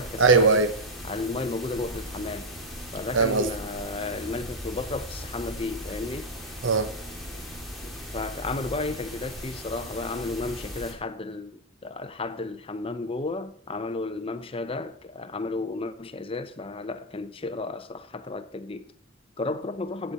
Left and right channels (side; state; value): both; normal; correlation 0.03